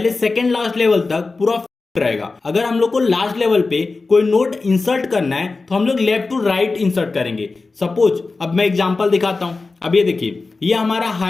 सेकेंड लास्ट लेवल तक पूरा रहेगा। अगर हम लोग को लास्ट लेवल पे कोई नोड इंसर्ट करना है तो हम लोग लेफ्ट टू राइट इंसर्ट करेंगे। सपोज अब मैं एग्जांपल दिखाता हूं। अब ये देखिए, ये हमारा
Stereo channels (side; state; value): right; quieter; 3.8 dB